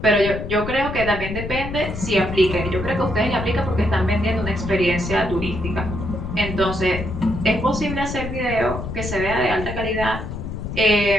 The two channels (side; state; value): left; noise; rumble, 6 dB below the sound